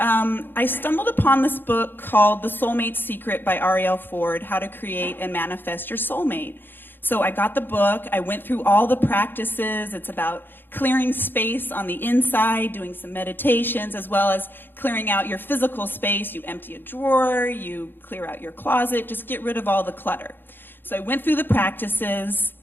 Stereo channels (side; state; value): right; late; 0.098 ms